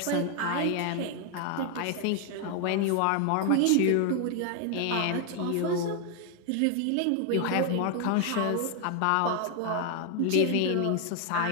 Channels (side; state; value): both; different; correlation 0.00